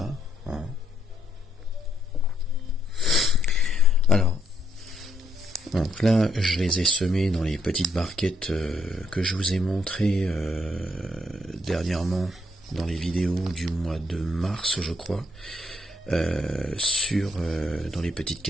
Voilà. Alors, donc là, je les ai semés dans les petites barquettes que je vous ai montrées dernièrement dans les vidéos du mois de mars, je crois, dans les petites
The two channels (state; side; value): normal; both; correlation 0.73